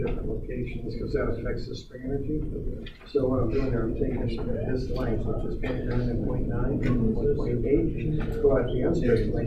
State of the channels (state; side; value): identical; both; correlation 1.00